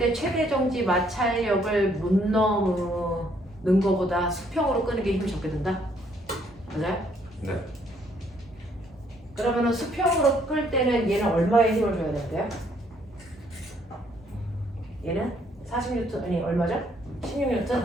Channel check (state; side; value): normal; both; correlation 0.67